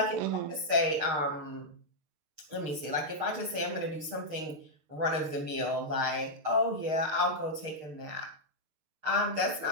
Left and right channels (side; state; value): left; late; 6.5 ms